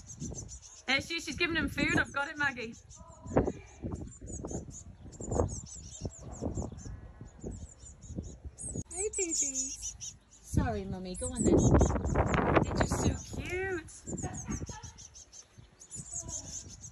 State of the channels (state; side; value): identical; both; correlation 1.00